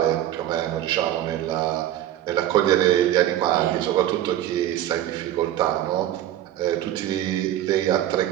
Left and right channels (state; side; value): quieter; left; 12.4 dB